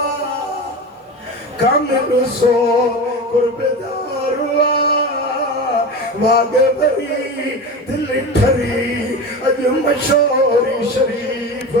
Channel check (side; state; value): both; normal; correlation 0.27